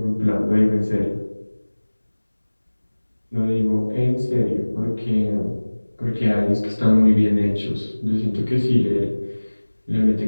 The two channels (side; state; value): both; inverted; correlation -1.00